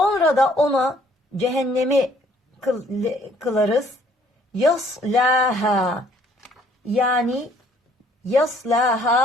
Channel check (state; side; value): normal; both; correlation 0.62